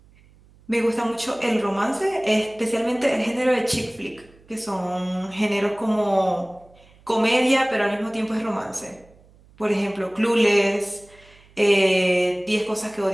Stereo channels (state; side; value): noise; right; hum, 28 dB below the sound